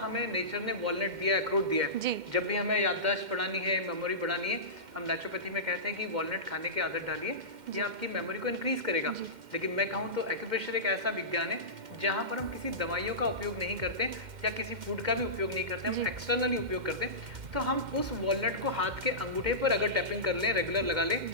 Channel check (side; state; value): left; late; 2.1 ms